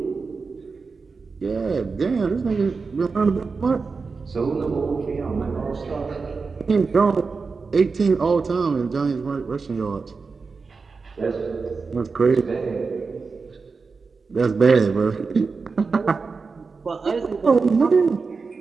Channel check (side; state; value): left; quieter; 4.6 dB